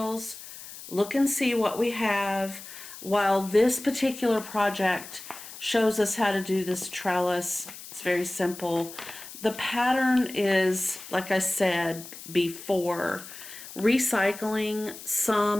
look and see what we have, while this particular project shows us how to do this trellis. It's very simple. The pattern is, like I said before, recycling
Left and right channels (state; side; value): noise; left; hiss, 14 dB below the sound